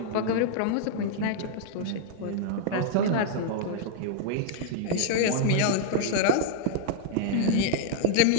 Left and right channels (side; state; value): both; different; correlation -0.01